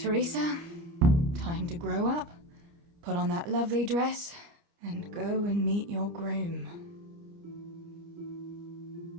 Time to grow up, put on that lovely dress, and go and meet your groom.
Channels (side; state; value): left; late; 29 ms